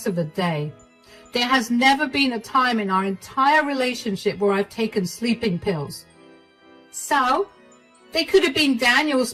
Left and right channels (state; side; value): identical; both; correlation 1.00